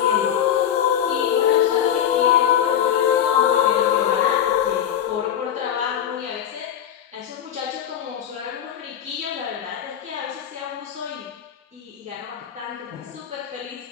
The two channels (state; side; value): quieter; right; 9.8 dB